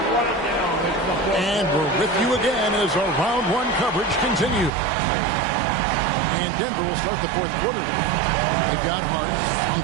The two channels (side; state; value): left; drops out; at 4.7 s